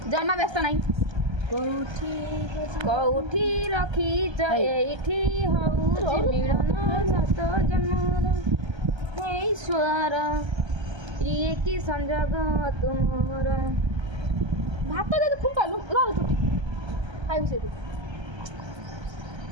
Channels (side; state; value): left; late; 1.3 ms